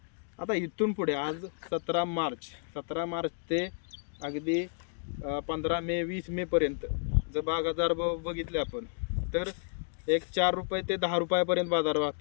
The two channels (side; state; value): right; silent; digital silence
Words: आता इथून पुढे आज 17 मार्च ते अगदी 15 मे 20 मेपर्यंत जर बाजारभाव बघितले आपण तर एक 4 रुपये ते 10 रुपयापर्यंत बाजार